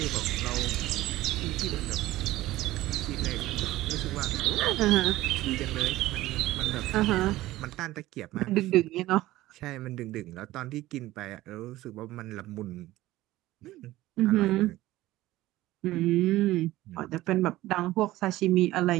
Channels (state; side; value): quieter; left; 16.6 dB